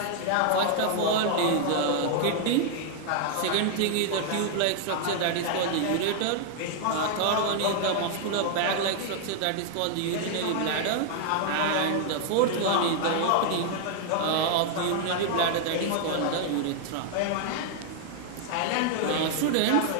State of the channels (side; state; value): both; different; correlation 0.00